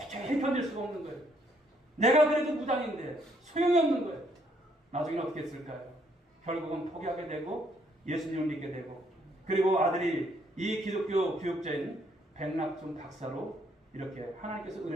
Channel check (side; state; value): both; normal; correlation 0.69